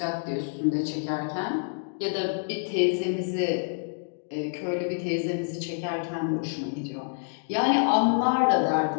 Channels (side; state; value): right; silent; digital silence